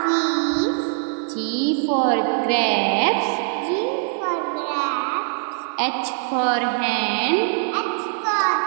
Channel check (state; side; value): silent; left; digital silence